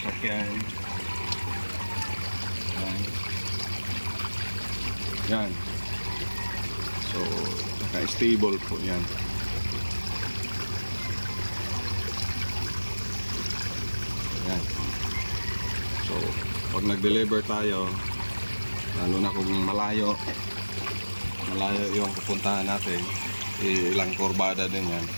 sakyan, yan. So naka-stable po yan. Yan. So pag nag-deliver tayo, lalo na kung malayo yung pupuntahan natin, ilang kurbada din yan.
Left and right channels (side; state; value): both; inverted; correlation -1.00